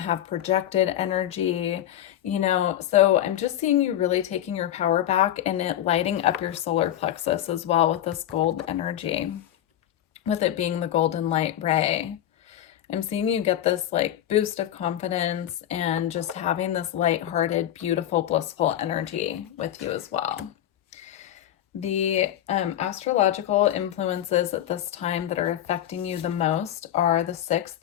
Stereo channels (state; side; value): quieter; right; 11.8 dB